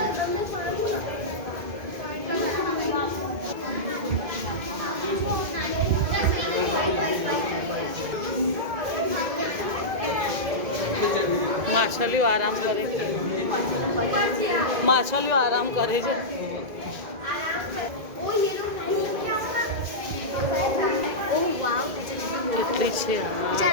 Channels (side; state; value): left; late; 2.0 ms